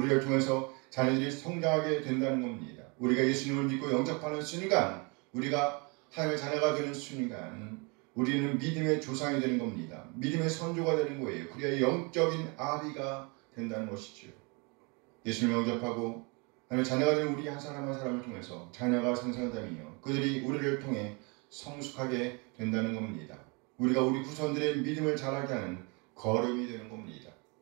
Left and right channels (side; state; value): left; quieter; 31.0 dB